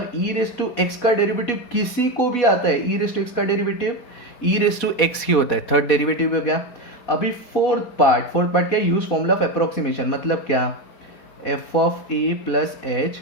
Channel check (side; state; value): right; late; 4.2 ms